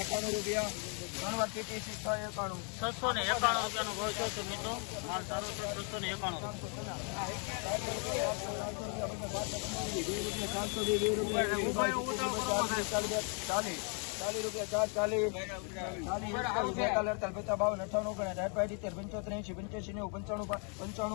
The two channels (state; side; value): quieter; right; 38.5 dB